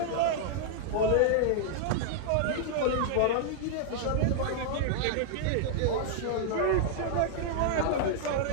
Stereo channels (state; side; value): different; both; correlation -0.01